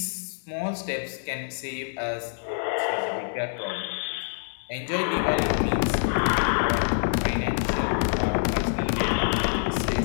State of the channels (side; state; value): right; silent; 61 dB below the other